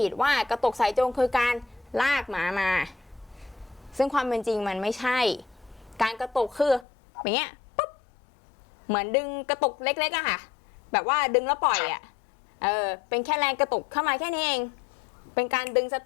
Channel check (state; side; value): drops out; right; at 6.9 s